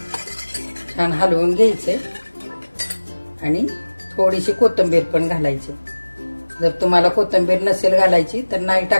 छान हलवून घ्यायचंय आणि थोडीशी कोथिंबीर पण घालायची. जर तुम्हाला कोथिंबीर नसेल घालायची तर नाही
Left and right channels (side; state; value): both; inverted; correlation -1.00